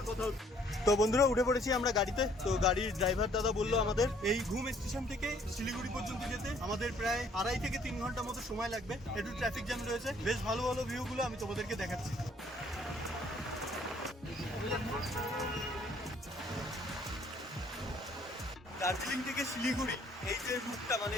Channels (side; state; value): both; normal; correlation 0.61